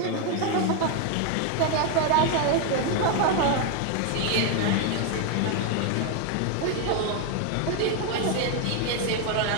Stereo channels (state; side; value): different; both; correlation 0.01